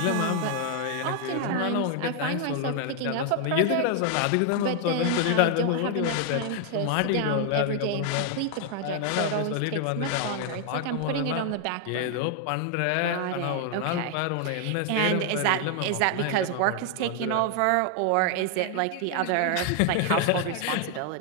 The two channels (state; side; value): different; both; correlation 0.00